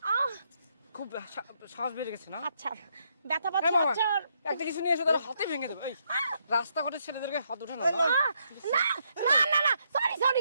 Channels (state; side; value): inverted; both; correlation -0.76